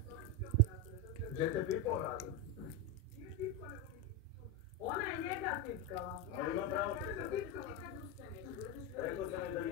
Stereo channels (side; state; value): both; normal; correlation 0.10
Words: Gdje te pipao Rada? Ona je njega tipkala. Ali ima pravo. Rekao sam je da